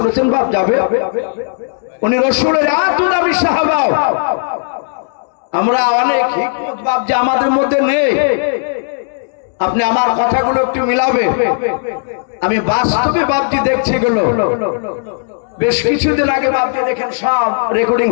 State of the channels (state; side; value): silent; right; digital silence